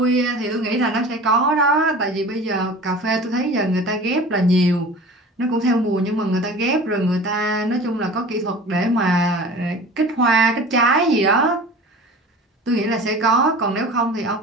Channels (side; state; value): both; normal; correlation 0.39